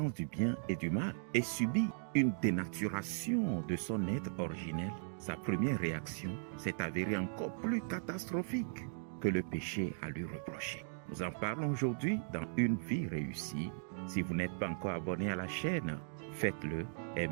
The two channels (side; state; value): left; silent; digital silence